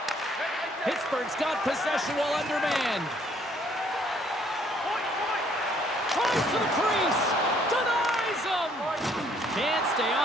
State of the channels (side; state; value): both; normal; correlation 0.64